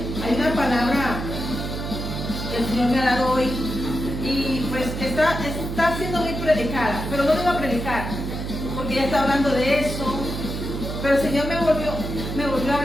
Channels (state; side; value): noise; right; hum, 5 dB below the sound